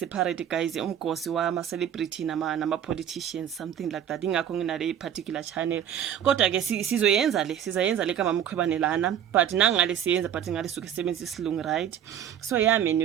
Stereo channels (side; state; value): left; quieter; 9.7 dB